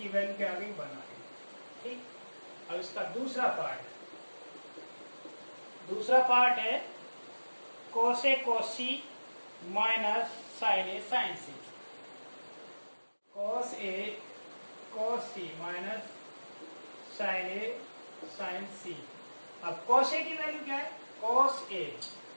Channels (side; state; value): both; inverted; correlation -1.00